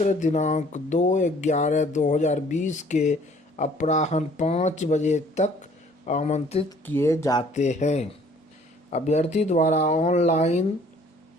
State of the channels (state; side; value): normal; both; correlation 0.57